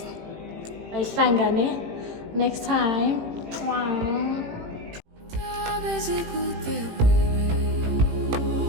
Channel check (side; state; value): left; late; 18 ms